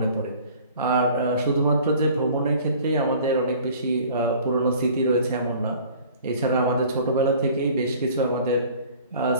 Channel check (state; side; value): inverted; both; correlation -0.49